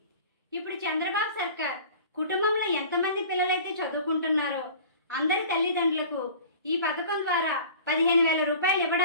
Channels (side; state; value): both; inverted; correlation -0.42